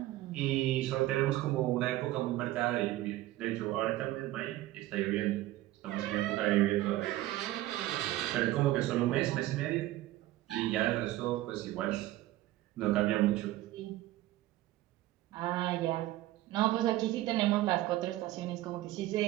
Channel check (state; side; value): quieter; left; 16.0 dB